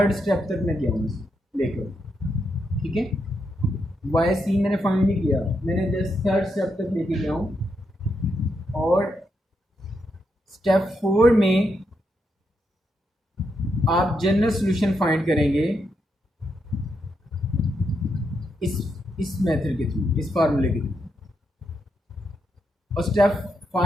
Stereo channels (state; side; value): normal; both; correlation 0.81